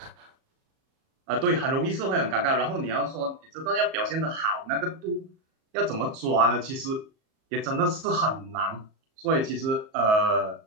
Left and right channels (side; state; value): left; late; 38 ms